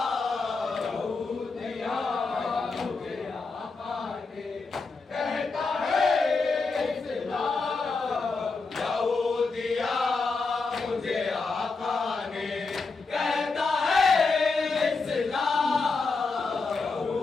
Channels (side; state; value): right; quieter; 4.2 dB